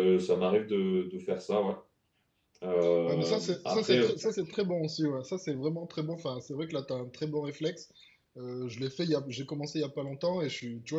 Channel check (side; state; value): both; identical; correlation 1.00